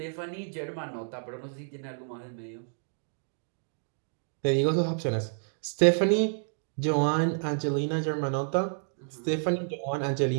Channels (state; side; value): silent; left; digital silence